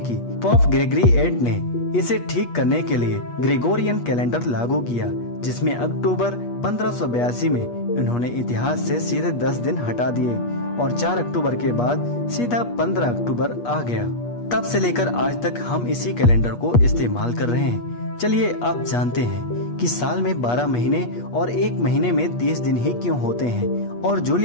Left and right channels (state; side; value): late; right; 8.4 ms